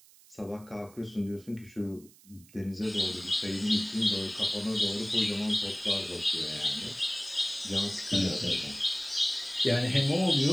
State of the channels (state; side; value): noise; right; hiss, 25 dB below the sound